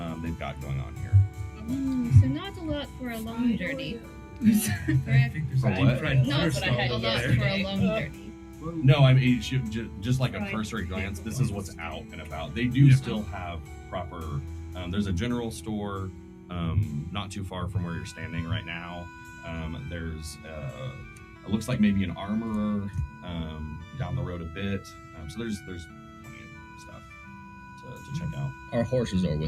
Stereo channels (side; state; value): both; identical; correlation 1.00